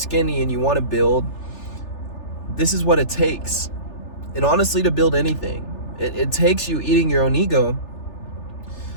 and you want to build, this is what it takes. And honestly, to build anything, it takes you eating your own ego,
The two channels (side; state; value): right; late; 3.3 ms